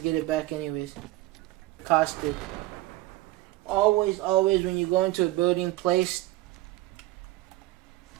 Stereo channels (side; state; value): left; quieter; 17.7 dB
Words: it back anyways. Costed. Always when you go into a building, place